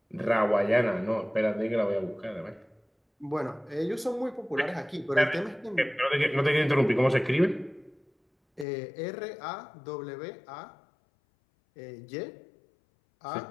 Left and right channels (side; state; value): right; drops out; at 8.7 s